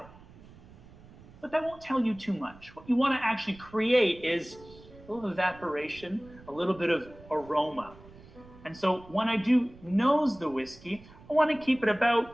But that won't tell you too much. What you want to actually create is a little evaporation, a little bit of aroma. And so when I do nose the whiskey, I want to keep it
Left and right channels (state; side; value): noise; right; rumble, 21 dB below the sound